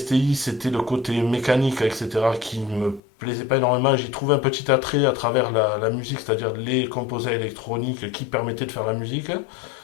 c'était le côté mécanique, etc., qui me plaisait pas énormément. J'y trouvais un petit attrait à travers la musique, c'est-à-dire les composants électroniques qui permettaient de faire la musique.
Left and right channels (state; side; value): drops out; right; at 3.0 s